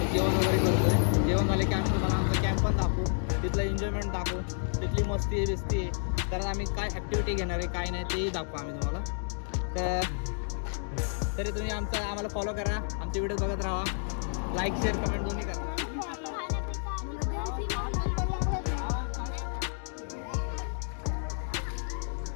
तर जेवण वगैरे करतोय. जेवण झाले की आम्ही तुम्हाला आमचा कॅम्प पण दाखवू, तिथलं एन्जॉयमेंट दाखवू, तिथली मस्ती आहे बिस्ती आहे. तर आम्ही काय ॲक्टिव्हिटी घेणार आहे काय नाही तेही दाखवू आम्ही तुम्हाला. तरी तुम्ही आम्हाला फॉलो करा, आमचे व्हिडिओ बघत राहा, लाईक शेअर कमेंट दोन्ही करा.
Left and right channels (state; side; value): silent; right; digital silence